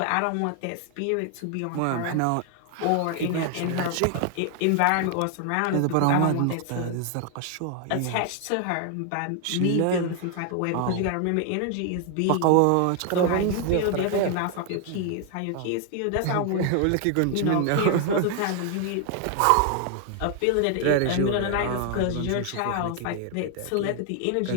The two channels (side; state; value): both; different; correlation 0.00